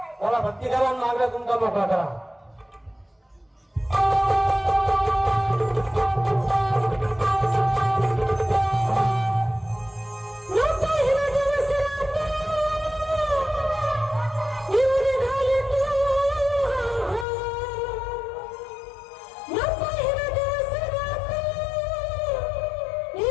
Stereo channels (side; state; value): right; drops out; at 17.2 s